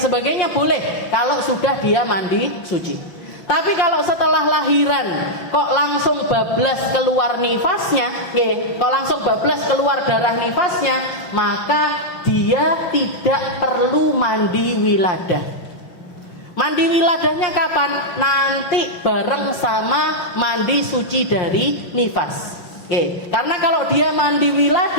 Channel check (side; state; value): right; late; 5.7 ms